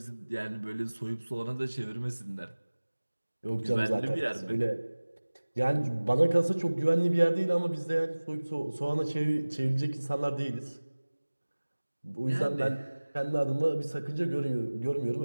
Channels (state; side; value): inverted; both; correlation -1.00